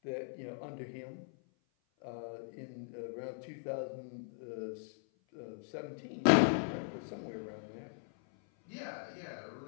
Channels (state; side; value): silent; right; 52 dB below the other